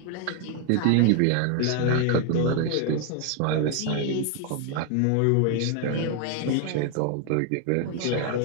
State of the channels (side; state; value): both; different; correlation 0.01